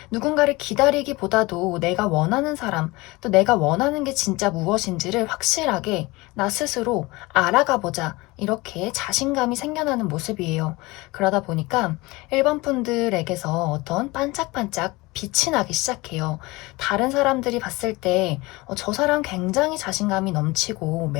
누군가를 기다리기보다도 내가 원하는 사람, 또 내가 원하는 게 진짜 무엇인지를 확실하게 나 스스로 알아가 보자. 이렇게 자신감이 생겨나는 모습이에요. 그러다 보니까 1번 분들에게서 어떤 반짝반짝 빛이 나기 시작해요. 다른 사람들이 봤을 때, 저 사람 굉장히 자신감이 넘치고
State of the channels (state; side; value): quieter; right; 22.4 dB